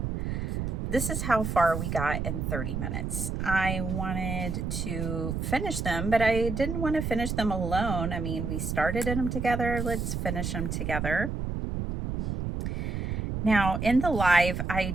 this is how far we got in 30 minutes. I wanted to finish them, but I didn't want to finish them alone. I mean, we started them together. Let's finish them together. Now, in the live,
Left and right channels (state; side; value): noise; right; rumble, 2 dB below the sound